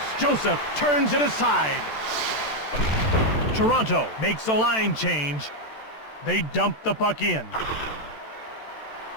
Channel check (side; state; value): right; late; 14 ms